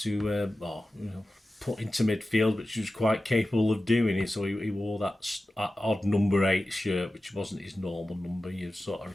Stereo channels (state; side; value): normal; both; correlation 0.94